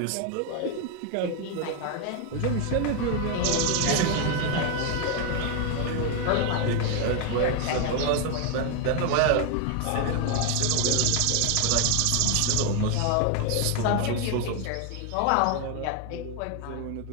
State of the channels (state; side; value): different; both; correlation 0.01